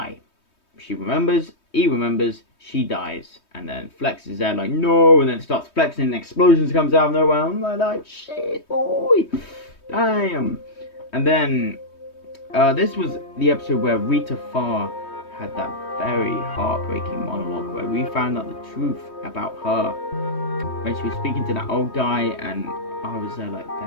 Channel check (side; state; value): right; late; 3.2 ms